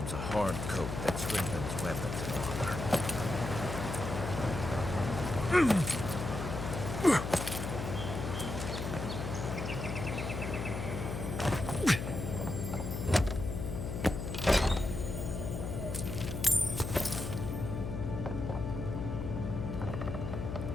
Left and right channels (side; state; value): left; noise; hum, 4 dB below the sound